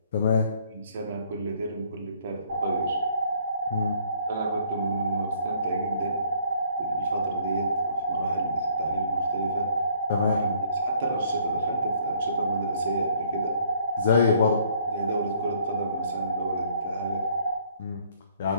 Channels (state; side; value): inverted; both; correlation -0.62